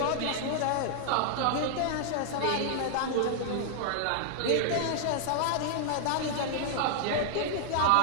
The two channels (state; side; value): different; both; correlation 0.00